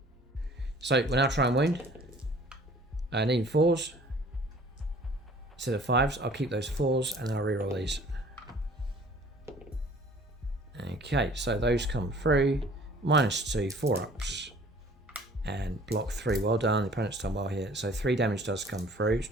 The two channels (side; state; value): both; normal; correlation 0.51